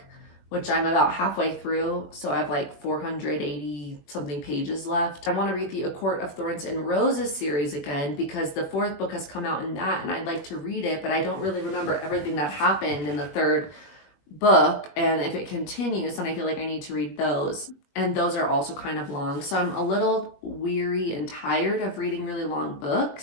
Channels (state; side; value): late; right; 21 ms